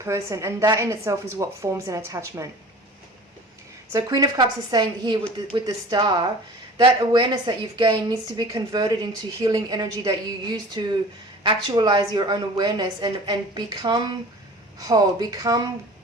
and that in itself is what forms an attachment. So Queen of Cups is saying here with the Star, that awareness that you've gained needs to be converted into healing energy that you use to actualize your own awareness and become whole, become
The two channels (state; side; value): normal; both; correlation 0.42